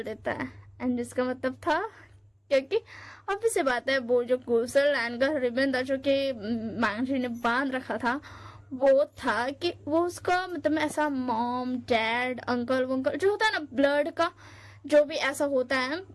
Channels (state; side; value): identical; both; correlation 1.00